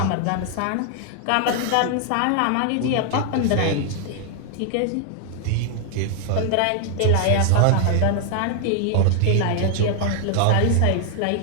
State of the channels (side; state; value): both; different; correlation 0.00